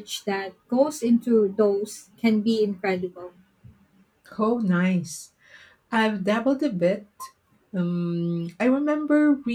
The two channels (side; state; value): both; identical; correlation 1.00